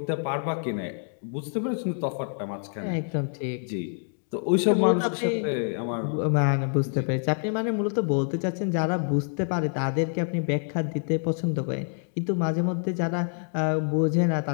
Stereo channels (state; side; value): silent; right; 57 dB below the other